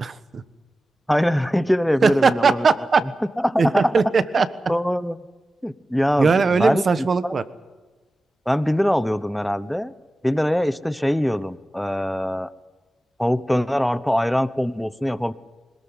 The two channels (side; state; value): both; normal; correlation 0.94